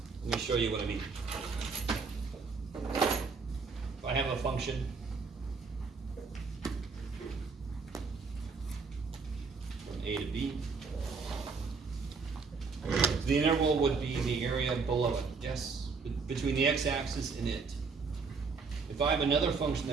Let me show you what I mean. If I have a function from A to B, the integral would be the area below it, yes? Between the x-axis and it. If I have another function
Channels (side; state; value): left; quieter; 4.8 dB